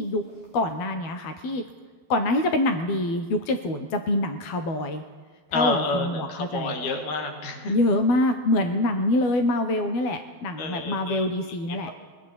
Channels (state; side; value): late; right; 12 ms